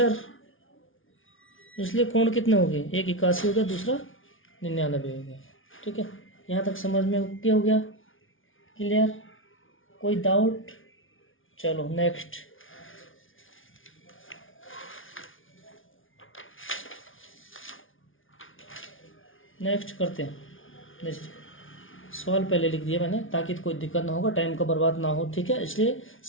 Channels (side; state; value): right; late; 0.57 ms